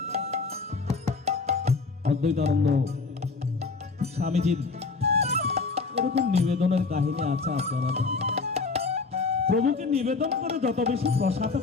অদ্বৈতানন্দ স্বামীজির এরকম নিবেদনের কাহিনী আছে, আপনারা জানেন। প্রভুকে নিবেদন করে যত বেশি প্রসাদ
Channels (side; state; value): right; quieter; 4.2 dB